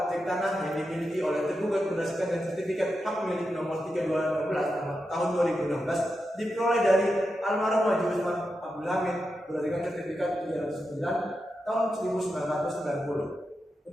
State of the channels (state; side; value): normal; both; correlation 0.88